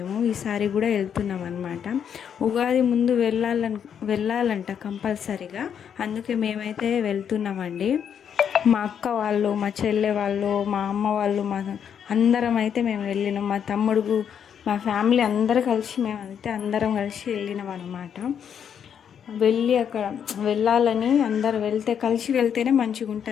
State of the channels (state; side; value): quieter; right; 8.2 dB